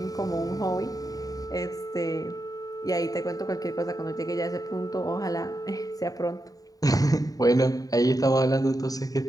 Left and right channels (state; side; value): late; right; 0.18 ms